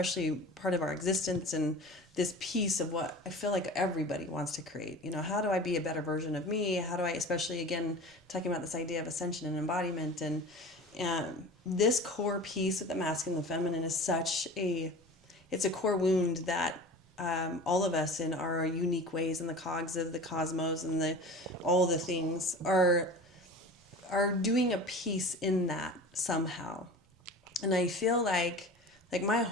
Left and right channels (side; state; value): both; normal; correlation 0.36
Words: part of our existence and this piece of what I feel like everybody wants to create, you know, how do I be a better version of me? How do I, especially again, talking about this idea of ascension and embodiment This core piece of the masculine and the feminine is it's a core wound that all of us in our unique ways in the cogs of the cosmos and all the things are doing a piece in that somehow. And I feel like my